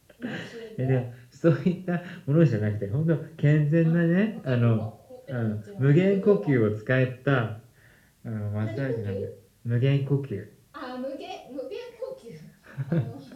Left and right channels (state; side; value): identical; both; correlation 1.00